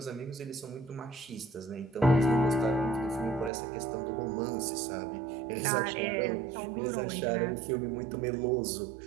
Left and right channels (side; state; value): left; drops out; at 3.5 s